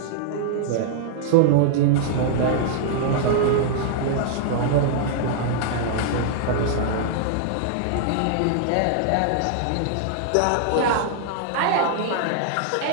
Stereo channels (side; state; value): both; different; correlation -0.01